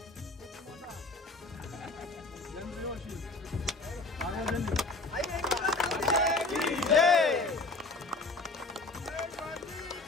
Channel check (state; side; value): quieter; right; 3.3 dB